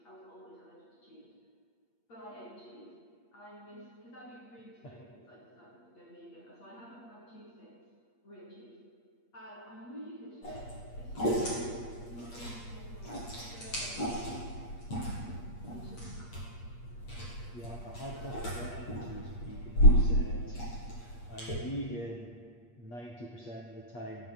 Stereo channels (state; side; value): late; right; 8.5 ms